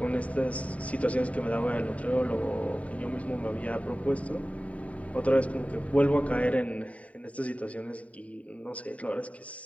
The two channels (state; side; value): late; right; 0.067 ms